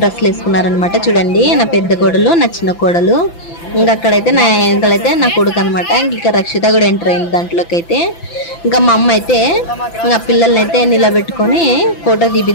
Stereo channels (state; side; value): late; right; 5.9 ms